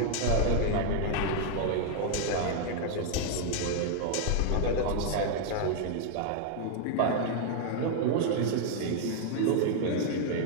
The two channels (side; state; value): both; different; correlation 0.00